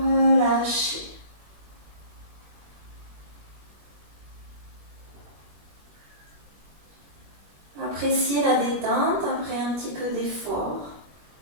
Appréciez la détente après un petit peu d'effort.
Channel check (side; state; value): left; late; 21 ms